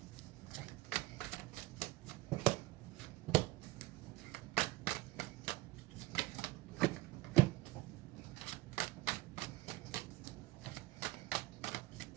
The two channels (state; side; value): quieter; left; 19.2 dB